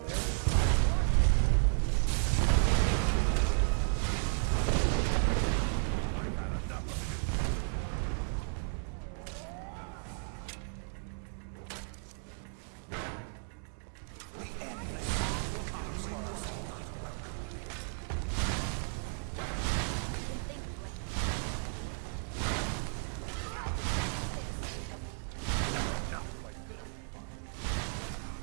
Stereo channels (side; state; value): left; silent; 55 dB below the other